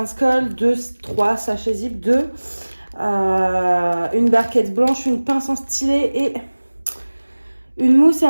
3 sachets zip, 2, une barquette blanche, une pince en stylet et une mousse et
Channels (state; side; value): inverted; both; correlation -1.00